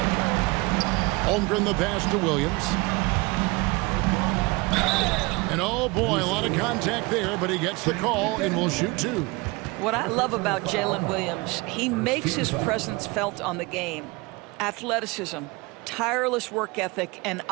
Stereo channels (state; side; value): quieter; left; 25.0 dB